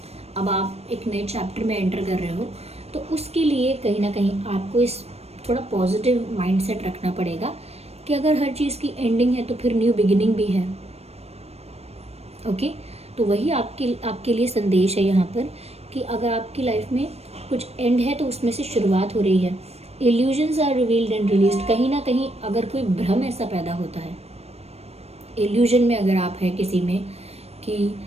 अब आप एक नए चैप्टर में एंटर कर रहे हो। तो उसके लिए कहीं ना कहीं आपको इस थोड़ा पॉजिटिव माइंडसेट रखना पड़ेगा कि अगर हर चीज़ की एंडिंग है तो फिर न्यू बिगिनिंग भी है। ओके, तो वही आपके लिए संदेश है यहाँ पर कि अगर आपकी लाइफ में कुछ एंड है तो उसमें से शुरुआत हो रही है। Illusions are revealed and released. कहीं ना कहीं अगर कोई भ्रम ऐसा पैदा होता है, इल्यूजन में अगर आप हैं किसी में कि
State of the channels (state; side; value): late; left; 0.30 ms